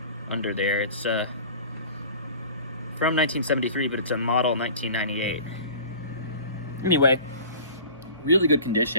under there. It's from 1973, but it's a model 1998. Anyway, really good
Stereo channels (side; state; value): both; inverted; correlation -0.42